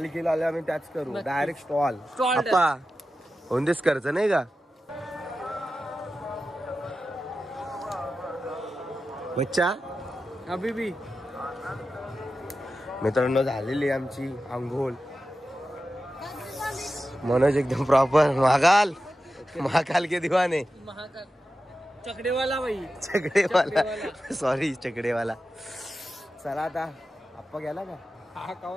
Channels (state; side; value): normal; both; correlation 0.92